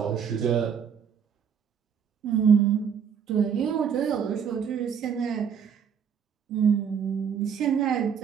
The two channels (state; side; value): quieter; left; 7.4 dB